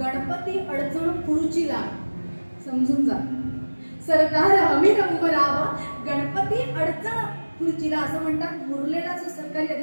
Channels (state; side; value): inverted; both; correlation -1.00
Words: अडचण खुर्चीला. समजून जा, सरदार अमीर उमराव, गणपती अडचण खुर्चीला. असं म्हणतात, मुरलेला जो सरकारी